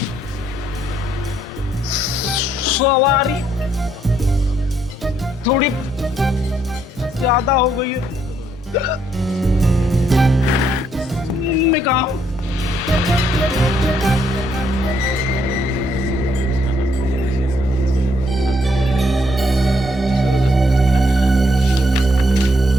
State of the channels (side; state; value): both; normal; correlation 0.72